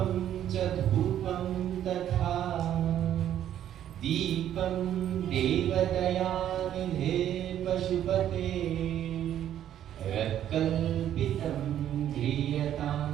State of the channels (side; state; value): left; quieter; 10.9 dB